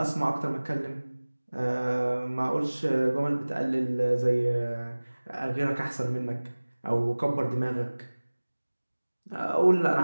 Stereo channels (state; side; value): inverted; both; correlation -1.00